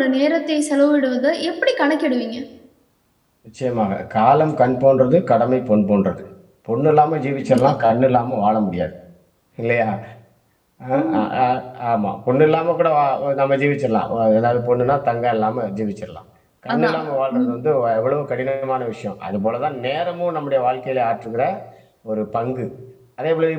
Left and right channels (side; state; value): both; identical; correlation 1.00